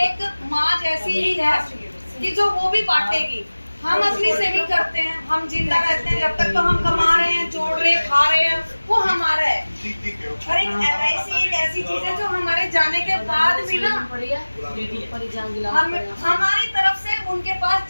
एक माँ जैसी ही है कि जो वो भी बांटेगी। हम अपनी सेविंग करते हैं, हम जिंदा रहते हैं, जब तक तो हम कमा रहे हैं, जोड़ रहे हैं, खा रहे हैं, वो हमारा है। और एक LIC एक ऐसी चीज है जो हमारे जाने के बाद भी ना हमारी तरफ से उनके पास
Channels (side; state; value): both; inverted; correlation -1.00